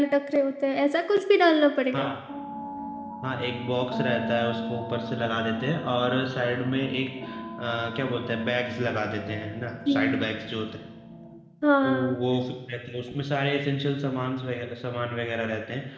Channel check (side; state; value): both; identical; correlation 1.00